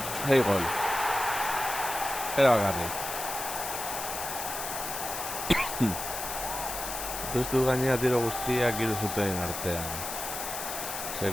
Hey, gol. Era garri. Puztu gainera tiro guztiak hiru zuten artean.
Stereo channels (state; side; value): noise; left; hiss, 6 dB below the sound